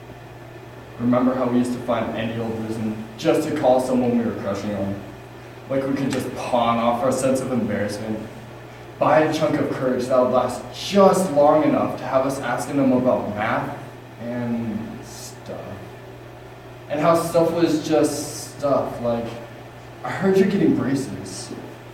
Remember how we used to find any old reason just to call someone we were crushing on, like we could just pawn off our sense of embarrassment, buy a chunk of courage that would last just long enough to have us asking them about math and stuff. And how stuff was just stuff, like, I heard you're getting braces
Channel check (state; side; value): identical; both; correlation 1.00